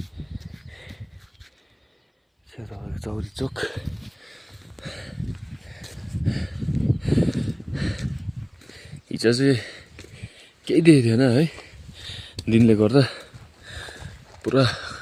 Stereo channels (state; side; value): identical; both; correlation 1.00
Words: चौरचोक हिजो चाहिँ केही देखेको थिएन है, दिनले गर्दा पुरा